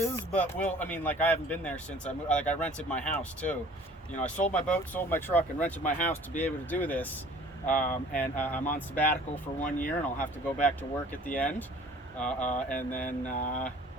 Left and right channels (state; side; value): normal; both; correlation 0.50